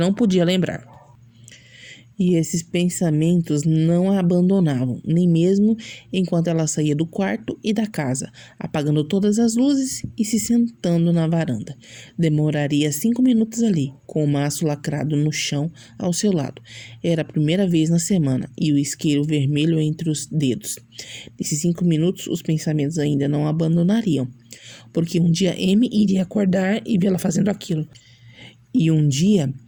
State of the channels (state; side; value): identical; both; correlation 1.00